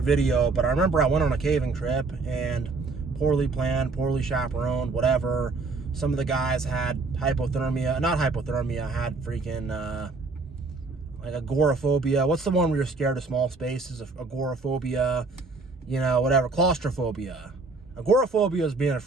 video. But I remember I went on a caving trip, and poorly planned, poorly chaperoned, whatever. Some of the guys had had freaking like agoraphobia. What's the one where you're scared of small spaces? Agoraphobia. You know, whatever, claustrophobia. Agoraphobia is being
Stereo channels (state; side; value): quieter; left; 3.9 dB